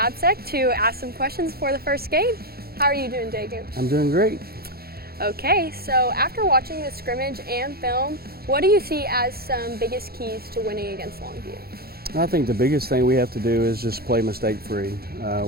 to ask some questions for the first game. How are you doing today, Coach? I'm doing great. Okay, so after watching the scrimmage and film, what do you see as some biggest keys to winning against Longview? I think the biggest thing we have to do is just play mistake-free.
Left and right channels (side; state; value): left; late; 0.45 ms